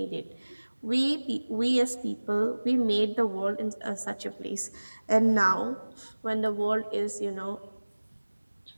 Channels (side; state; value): both; inverted; correlation -1.00